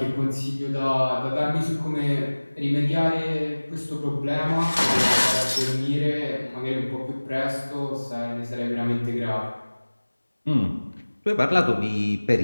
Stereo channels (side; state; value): both; inverted; correlation -1.00